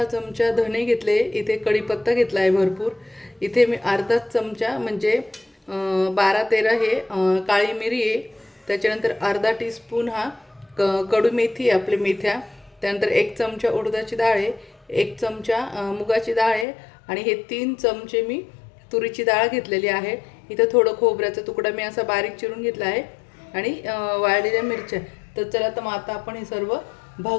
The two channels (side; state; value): right; drops out; at 16.7 s